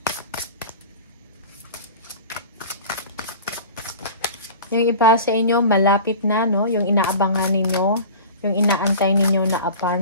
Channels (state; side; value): inverted; both; correlation -0.38